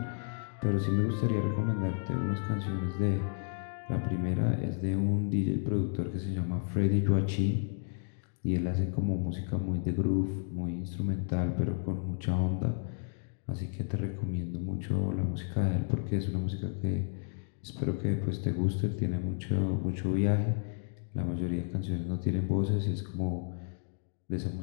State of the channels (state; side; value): silent; right; 56 dB below the other